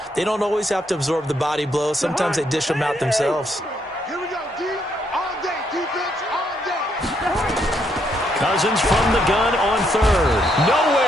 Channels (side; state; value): both; normal; correlation 0.74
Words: They don't always have to absorb the body blows. Sometimes they dish them out themselves. Here we go, D. All day. Defense all day. Cousins from the gun on third.